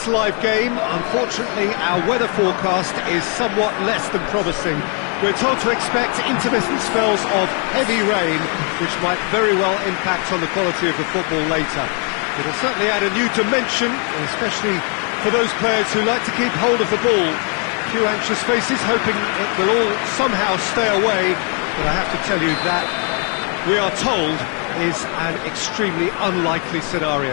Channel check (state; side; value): quieter; right; 38.8 dB